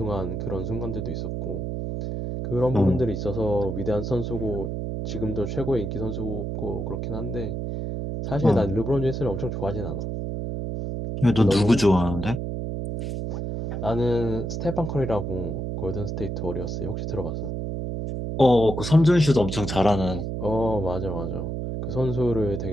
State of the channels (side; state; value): right; noise; hum, 3 dB below the sound